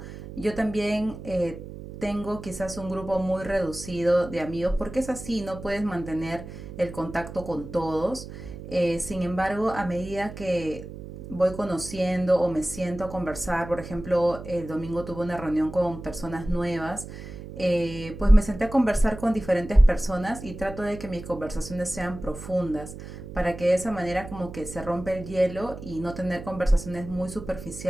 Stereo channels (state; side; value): noise; right; hum, 12 dB below the sound